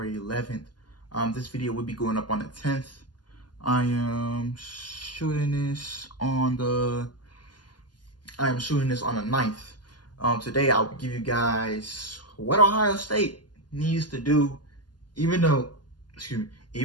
11th. This video will be going up on the 10th. I am shooting this on the 9th. Today I'll give you guys what Ohio State needs to do, even though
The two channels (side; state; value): right; late; 0.70 ms